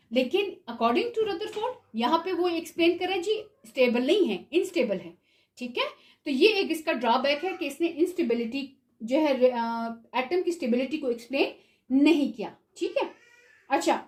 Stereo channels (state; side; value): identical; both; correlation 1.00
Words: लेकिन अकॉर्डिंग टू रदरफोर्ड यहाँ पे वो एक्सप्लेन कर रहे हैं जी स्टेबल नहीं है, इनस्टेबल है, ठीक है। तो ये एक इसका ड्रॉबैक है कि इसने इंस्टेबिलिटी जो है एटम की स्टेबिलिटी को एक्सप्लेन नहीं किया, ठीक है। अच्छा,